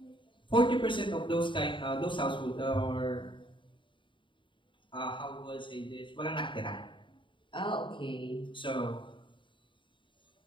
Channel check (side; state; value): right; late; 0.24 ms